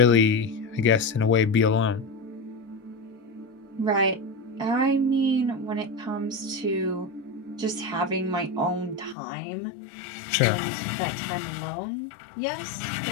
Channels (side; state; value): right; drops out; at 9.2 s